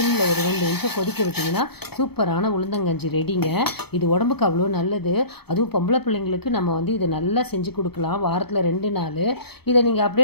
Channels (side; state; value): right; late; 0.97 ms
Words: ஒரு 2 நிமிஷம் கொதிக்க விட்டிங்கன்னா சூப்பரான உளுந்தங்கஞ்சி ரெடிங்க. இது உடம்புக்கு அவ்வளோ நல்லது. அதுவும் பொம்பளை பிள்ளைங்களுக்கு நம்ம இதை நல்லா செஞ்சு கொடுக்கலாம். வாரத்தில் 2 நாள் இதை நீங்கள்